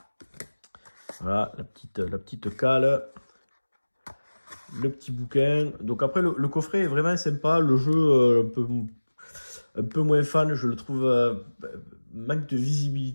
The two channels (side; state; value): both; inverted; correlation -1.00